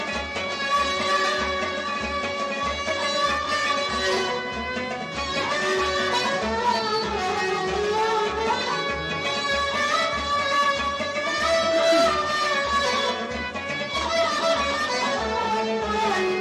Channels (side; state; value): both; identical; correlation 1.00